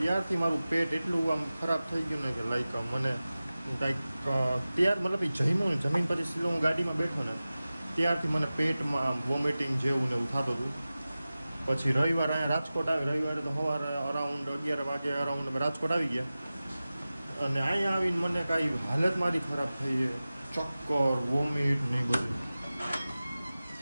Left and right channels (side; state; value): both; inverted; correlation -0.96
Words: મારું પેટ એટલું આમ ખરાબ થઈ ગયું ને કે લાઈક મને કાંઈક ત્યાર મતલબ એ જમ્યું ને જમીન પછી સીધો હું ગાડીમાં બેઠો ને ત્યારથી મને પેટમાં વોમિટિંગ જેવું ને એવું થતું હતું. પછી રવિવાર અહીંયા રાજકોટ આવી, રવિવારે તો સવારે અરાઉન્ડ 11 વાગે અરાઉન્ડ અમે રાજકોટ આવી ગયા. અને અહીંયા આવીને મને કાંઈ હાલત મારી ખરાબ થઈ છે, ચક્કર, વોમિટ ને એ બધું.